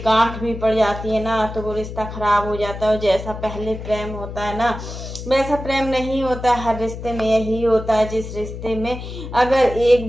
गांठ भी पड़ जाती है ना, तो वो रिश्ता ख़राब हो जाता है। और जैसा पहले प्रेम होता है ना, वैसा प्रेम नहीं होता है। हर रिश्ते में यही होता है, जिस रिश्ते में अगर एक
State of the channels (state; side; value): noise; left; hum, 9 dB below the sound